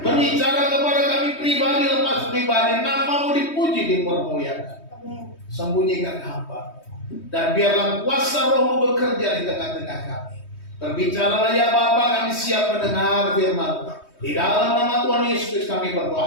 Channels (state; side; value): late; right; 3.2 ms